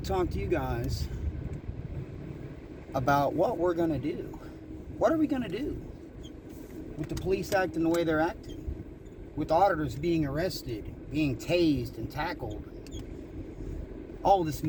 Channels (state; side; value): identical; both; correlation 1.00